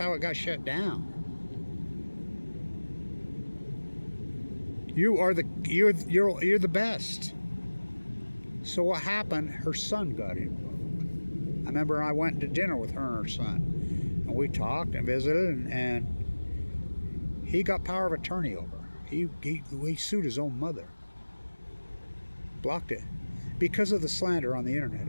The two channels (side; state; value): both; inverted; correlation -1.00